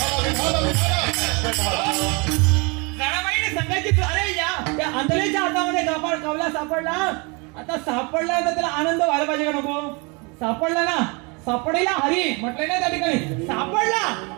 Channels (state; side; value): quieter; left; 30.0 dB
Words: जनाबाईने सांगायची, अरे या आंधळ्याच्या हातामध्ये कावला सापडला. आता सापडला तर त्याला आनंद व्हायला पाहिजे का नको? सापडला ना, सापडेला हरी म्हटलंय ना त्या ठिकाणी, सापडला.